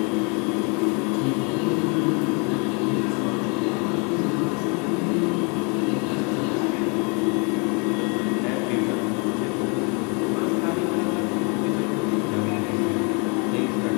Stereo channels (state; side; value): quieter; right; 33.2 dB